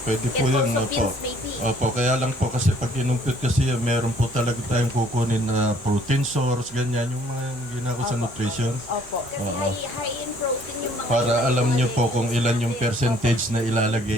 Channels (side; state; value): both; normal; correlation 0.60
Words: Pwede po And yan. also Opo. beans maybe. Opo, kaya lang po kasi pag inumpit kasi meron po talaga tayong kukunin na protein source, ganyan, yung mga ginako sa nutrition. Opo. Kasi high in protein yung mga... Para alam nyo po kung ilan yung percentage na